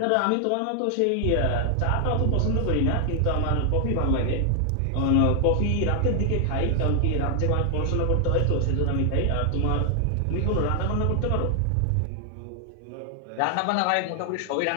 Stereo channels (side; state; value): both; different; correlation 0.00